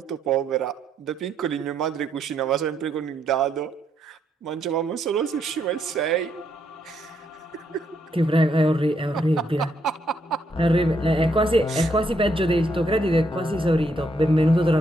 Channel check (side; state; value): both; normal; correlation 0.75